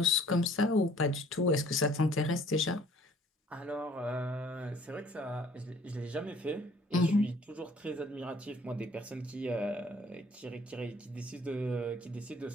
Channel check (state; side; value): normal; both; correlation 0.56